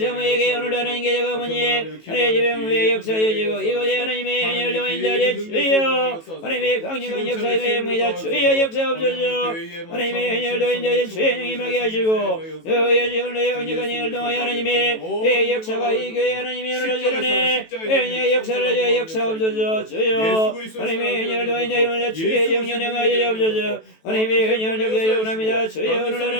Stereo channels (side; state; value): right; late; 18 ms